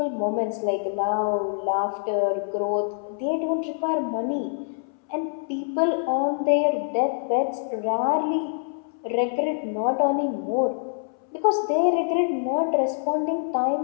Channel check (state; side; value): silent; right; 62 dB below the other